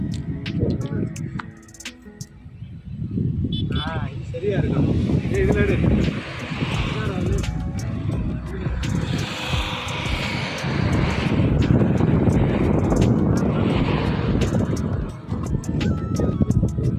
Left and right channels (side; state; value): both; identical; correlation 1.00